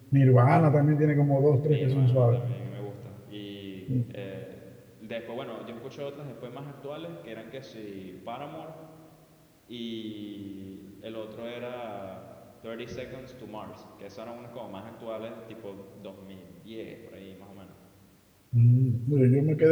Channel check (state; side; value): identical; both; correlation 1.00